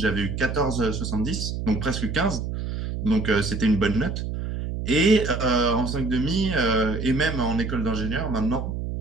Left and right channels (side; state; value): right; noise; hum, 4 dB below the sound